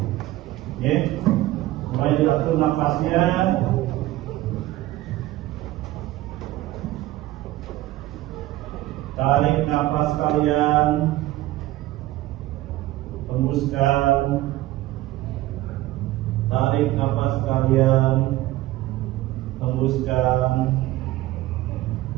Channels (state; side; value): quieter; left; 16.4 dB